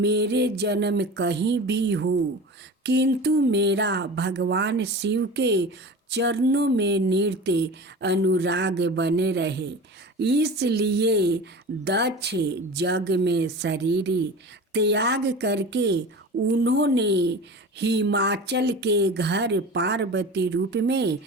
जन्म कहीं भी हो, किंतु मेरा भगवान शिव के चरणों में नृत्य अनुराग बने रहे। इसलिए दक्ष जग में शरीर त्याग करके उन्होंने हिमाचल के घर पार्वती रूप में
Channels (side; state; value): both; normal; correlation 0.34